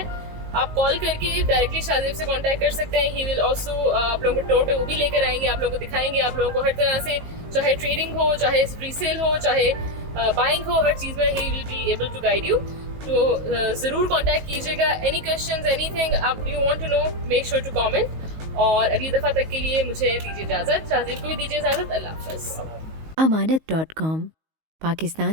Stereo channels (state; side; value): late; left; 19 ms